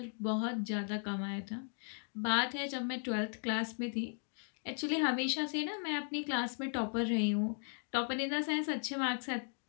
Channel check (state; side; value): silent; right; 53 dB below the other